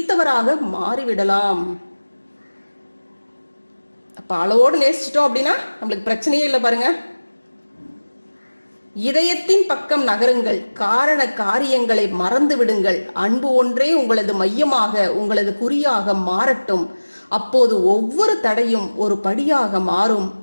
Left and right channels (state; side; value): inverted; both; correlation -1.00